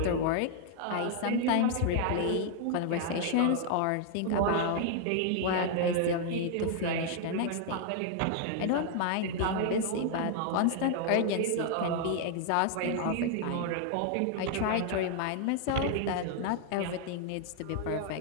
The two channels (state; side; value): different; both; correlation 0.00